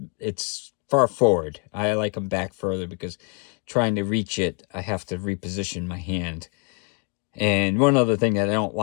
it's far forward. I like them back further because trying to reach it, I have to reposition my hand. And one other thing that I don't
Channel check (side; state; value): right; quieter; 37.0 dB